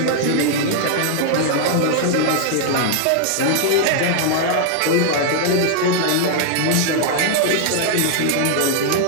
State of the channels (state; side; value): different; both; correlation -0.01